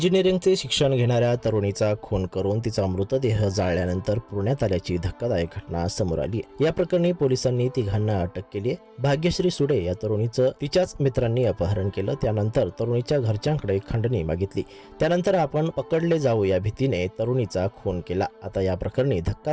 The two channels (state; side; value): identical; both; correlation 1.00